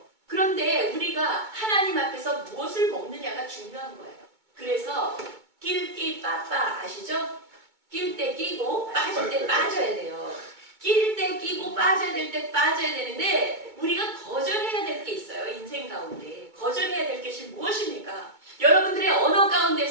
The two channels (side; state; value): left; late; 2.2 ms